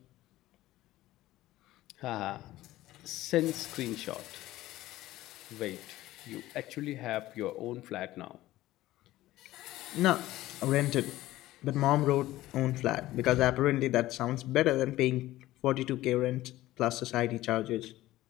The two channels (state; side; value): quieter; right; 16.1 dB